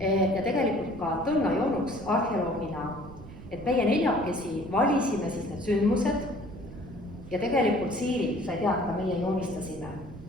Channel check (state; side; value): noise; right; rumble, 16 dB below the sound